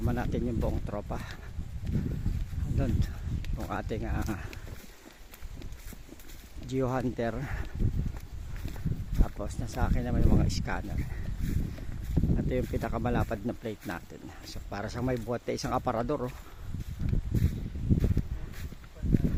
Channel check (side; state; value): both; identical; correlation 1.00